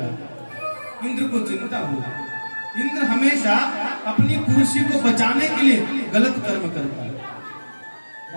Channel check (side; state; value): both; inverted; correlation -1.00